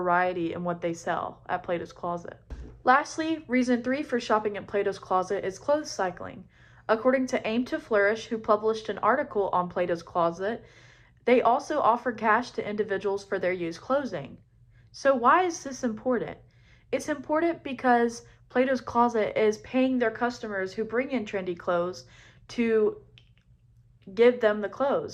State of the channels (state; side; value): identical; both; correlation 1.00